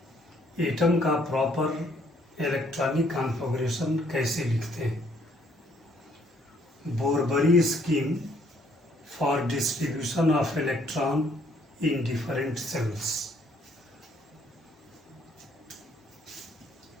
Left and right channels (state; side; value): normal; both; correlation 0.66